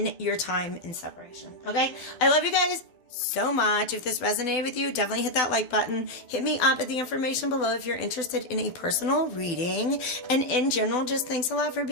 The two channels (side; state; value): right; late; 12 ms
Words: your time in separation. Okay? I love you guys so much. If this resonated with you, definitely hit that like button. Hit me up at the information below if you're interested in a personal reading. And in general, just thanks a lot for